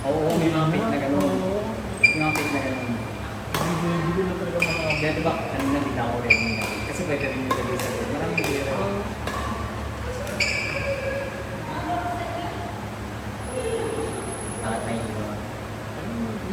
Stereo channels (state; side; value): identical; both; correlation 1.00